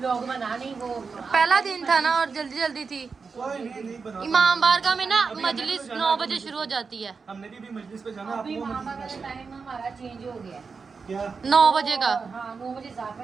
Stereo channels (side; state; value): left; quieter; 5.0 dB